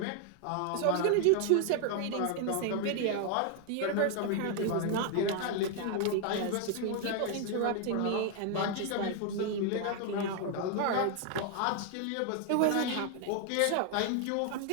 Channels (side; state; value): both; different; correlation 0.00